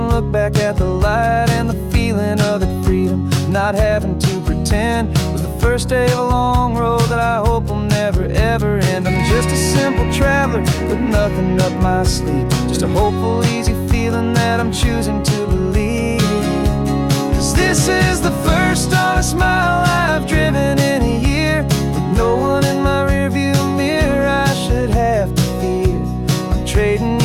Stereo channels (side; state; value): both; identical; correlation 1.00